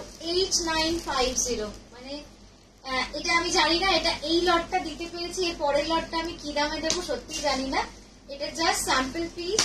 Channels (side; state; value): both; identical; correlation 1.00